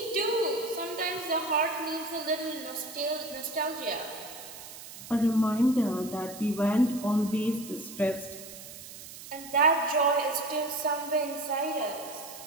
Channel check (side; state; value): right; noise; hiss, 14 dB below the sound